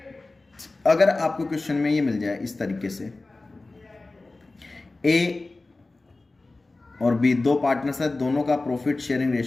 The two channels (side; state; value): right; quieter; 3.2 dB